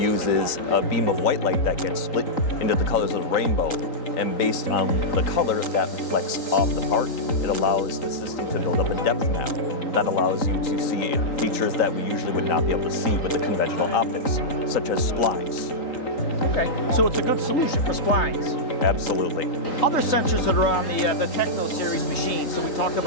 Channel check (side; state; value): right; late; 3.9 ms